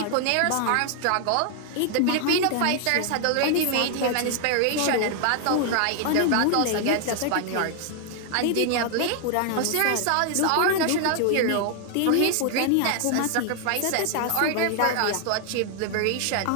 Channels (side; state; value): both; different; correlation 0.00